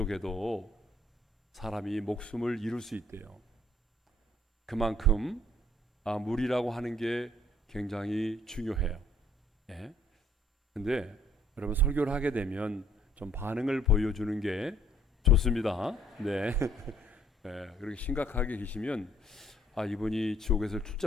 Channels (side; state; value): both; normal; correlation 0.61